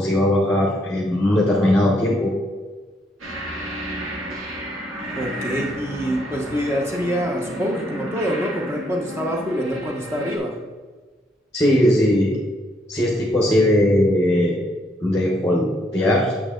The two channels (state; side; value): normal; both; correlation 0.72